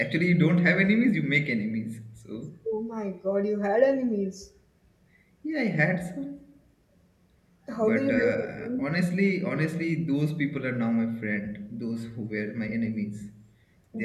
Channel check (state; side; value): identical; both; correlation 1.00